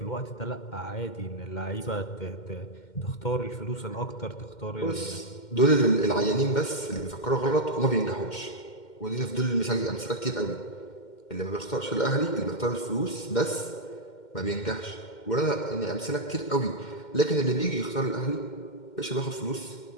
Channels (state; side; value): late; right; 2.1 ms